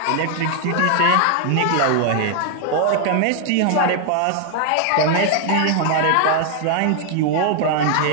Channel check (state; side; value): different; both; correlation 0.00